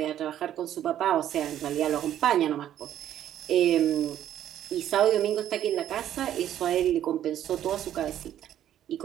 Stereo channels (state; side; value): quieter; left; 11.2 dB